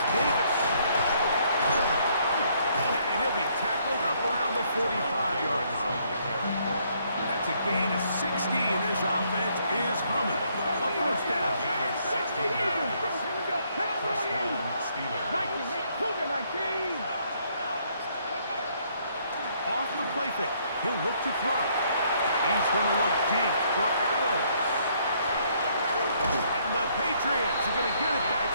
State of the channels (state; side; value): inverted; both; correlation -0.68